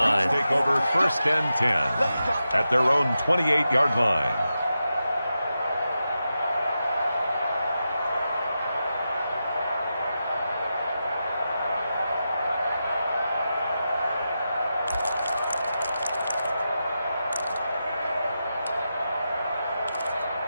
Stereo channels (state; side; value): inverted; both; correlation -0.89